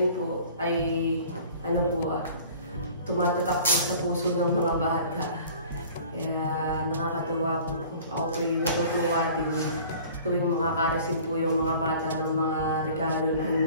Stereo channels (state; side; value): inverted; both; correlation -0.47